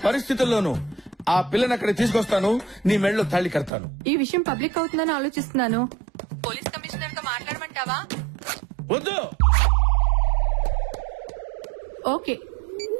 పరిస్థితుల్లోనూ ఆ పిల్లని అక్కడ తీసుకొస్తాను. నీ మెడలో తాళి కడతాను. ఈ విషయం పబ్లిక్ అవుతుందని ఆలోచిస్తున్నాను. పోలీస్ కమిషనర్ తో మాట్లాడమంటావా? వద్దు. ఓకే.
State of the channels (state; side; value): drops out; left; at 3.7 s